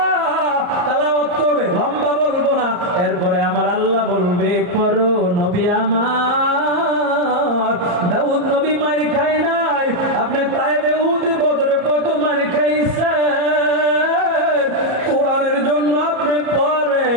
তেলাওয়াত করবে, লম্বা বলবো না। এরপরে আমার আল্লাহ বলবে, পড়ো নবী আমার। দাউদ নবী মার খায় নাই, আপনি তায়েবে উহুদ বদরে কত মার খাইছেন, কোরআনের জন্য আপনি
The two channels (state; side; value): late; left; 34 ms